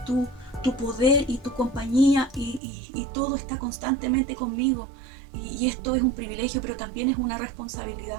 poder y tu compañía y todo está constantemente conmigo. Y esto es un privilegio, pero también es una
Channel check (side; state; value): left; drops out; at 2.6 s